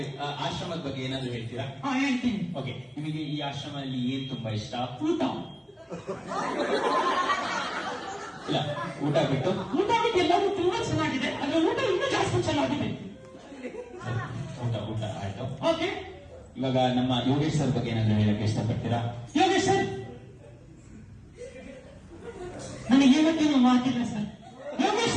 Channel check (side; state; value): both; identical; correlation 1.00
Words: ಆಶ್ರಮದ ಬಗ್ಗೆ ಏನಾದ್ರು ಹೇಳ್ತೀರಾ? ಹೇಳ್ತೀನಿ. ಓಕೆ, ನಿಮಗೆ ಈ ಆಶ್ರಮದಲ್ಲಿ ಏನ್ ತುಂಬಾ ಇಷ್ಟ? ಊಟ. ಇಲ್ಲ, ಊಟ ಬಿಟ್ಟು ಎಲ್ಲವೂ ತುಂಬಾ ಚೆನ್ನಾಗಿದೆ. ಅದ್ರ ಊಟ ಇನ್ನೂ ಜಾಸ್ತಿ ಚೆನ್ನಾಗಿದೆ. ಊಟ ಆಯ್ತು. ಓಕೆ, ಇವಾಗ ನಮ್ಮ ಯೋಗೇಶ್ ಸರ್ ಬಗ್ಗೆ ಏನಾದ್ರು ಹೇಳಕ್ಕೆ ಇಷ್ಟಪಡ್ತೀರಾ? ಯೋಗೇಶ್ ಸರ್ ನನಗೆ ಇವತ್ತೇನು ಮಾತಿಲ್ಲ ಸರ್. ಯೋಗೇಶ್